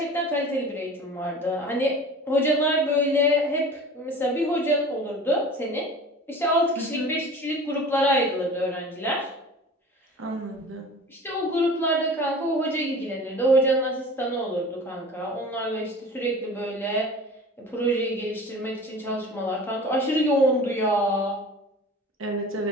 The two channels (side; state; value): both; normal; correlation 0.40